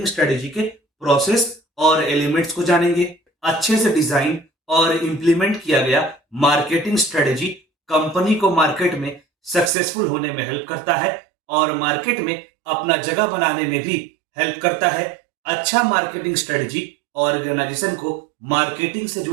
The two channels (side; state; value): left; drops out; at 9.7 s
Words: स्ट्रेटेजी के प्रोसेस और एलिमेंट्स को जानेंगे। अच्छे से डिजाइन और इंप्लीमेंट किया गया मार्केटिंग स्ट्रेटेजी कंपनी को मार्केट में सक्सेसफुल होने में हेल्प करता है और मार्केट में अपना जगह बनाने में भी हेल्प करता है। अच्छा मार्केटिंग स्ट्रेटेजी ऑर्गेनाइजेशन को मार्केटिंग से